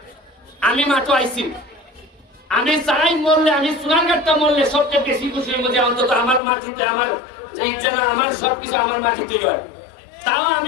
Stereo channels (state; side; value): drops out; right; at 6.4 s